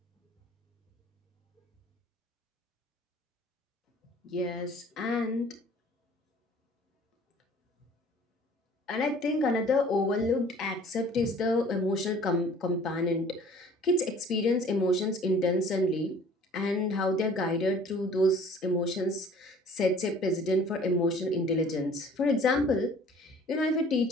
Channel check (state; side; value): normal; both; correlation 0.51